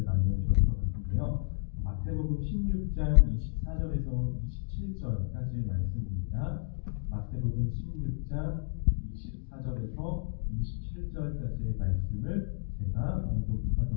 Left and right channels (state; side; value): silent; right; digital silence